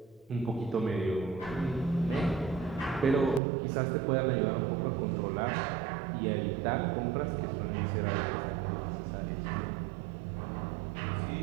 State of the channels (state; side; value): drops out; left; at 3.4 s